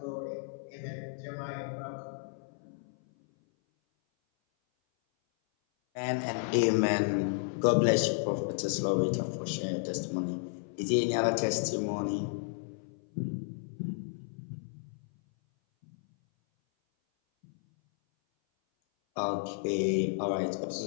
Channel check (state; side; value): silent; right; 56 dB below the other